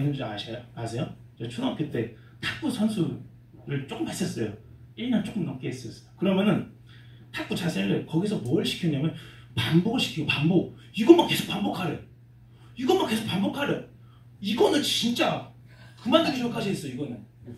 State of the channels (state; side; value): identical; both; correlation 1.00